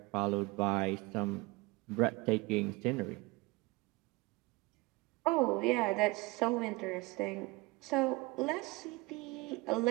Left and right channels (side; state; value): left; quieter; 23.4 dB